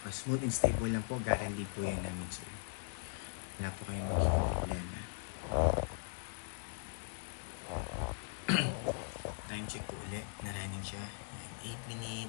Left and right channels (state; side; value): silent; right; 52 dB below the other